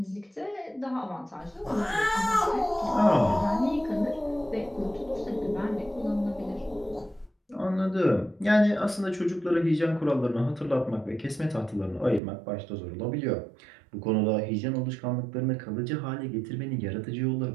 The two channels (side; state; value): left; drops out; at 12.2 s